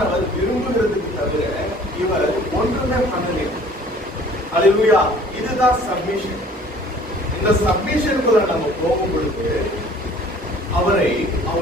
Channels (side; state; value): both; normal; correlation 0.52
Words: விரும்புகிறதுக்கு தவிர இவர் ஒன்றுமே பண்ணல. அல்லேலூயா. இதுதான் சப்மிஷன். இந்த சப்மிஷனுக்குள்ள நம்ம போகும் பொழுது அவரை,